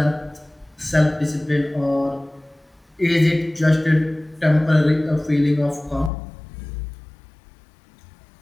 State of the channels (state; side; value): drops out; right; at 6.1 s